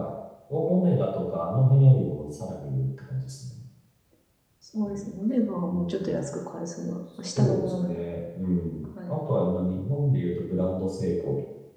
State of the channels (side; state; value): both; identical; correlation 1.00